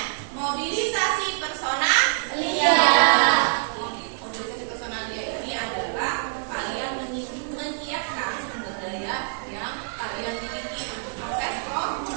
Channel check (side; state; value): left; silent; 61 dB below the other